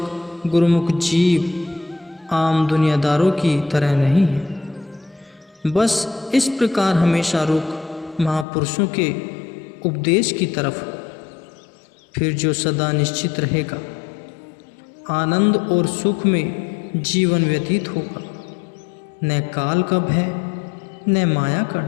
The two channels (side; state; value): right; drops out; at 8.5 s